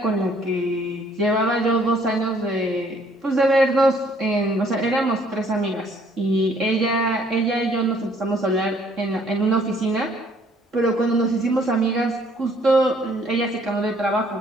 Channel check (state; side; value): normal; both; correlation 0.62